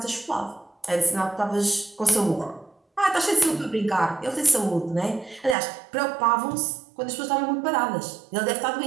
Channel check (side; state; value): left; drops out; at 5.6 s